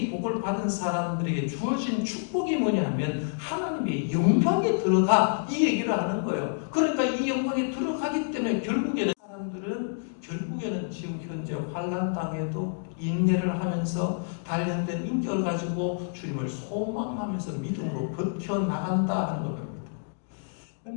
복을 받은 사람들에게 주어진 축복이 뭐냐 하면 하나님의 영광에 들어가, 이 얘기를 하는 거예요. 그러니까 이 영광에 들어가기 때문에 결국에는 사람들은 우리는 지금 현재 환난 땅에도 인내를 하면서 단련된 인격을 가지고 주님을 소망하면서 믿음으로 버텨나간다 하는 겁니다.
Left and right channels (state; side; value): silent; right; digital silence